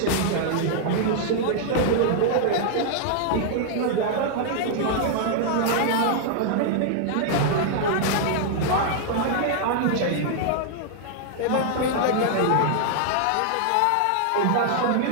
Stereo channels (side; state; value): both; different; correlation -0.01